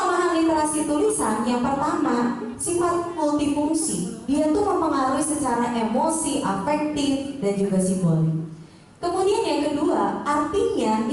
literasi tulisan yang pertama sifat multifungsi. Dia tuh mempengaruhi secara emosi, afektif, dan juga simbolik. Kemudian yang kedua, artinya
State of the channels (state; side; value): identical; both; correlation 1.00